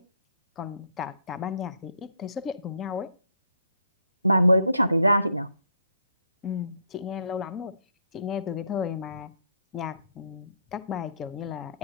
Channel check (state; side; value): inverted; both; correlation -0.68